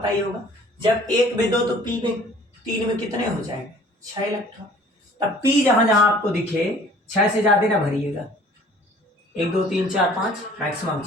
ही होगा, जब 1 में 2 तो पी में 3 में कितने हो जाएंगे 6 इलेक्ट्रॉन। तब पी जहां जहां आपको दिखे 6 से ज्यादा ना भरिएगा, 1 2 3 4 5 मैक्सिमम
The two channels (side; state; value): both; normal; correlation 0.52